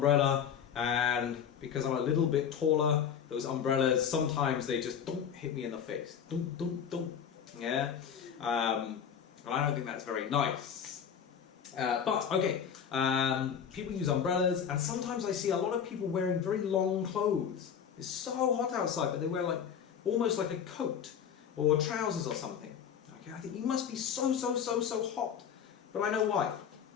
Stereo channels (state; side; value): quieter; right; 8.0 dB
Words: and because I'm a little bit taller, those umbrellas, sometimes they just don't hit me in the face. Don't. Yeah? And I don't think that's very nice. But, okay, people use umbrellas, and sometimes I see a lot of people wearing very long clothes. It's so hot outside, but they wear like almost like a coat or trousers or something. Okay, I think you must be so hot. But I know why.